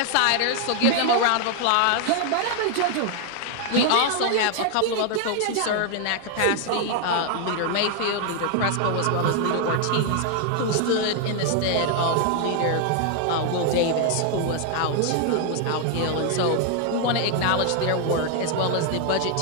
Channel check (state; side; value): different; both; correlation 0.00